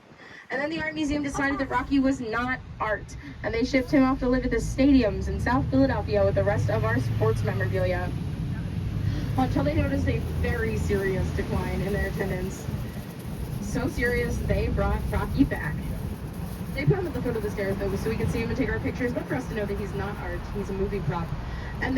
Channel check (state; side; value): identical; both; correlation 1.00